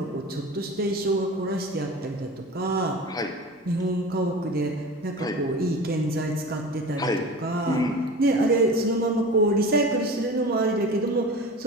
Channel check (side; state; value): both; normal; correlation 0.35